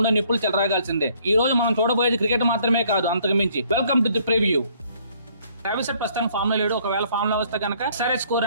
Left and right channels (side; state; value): both; inverted; correlation -0.63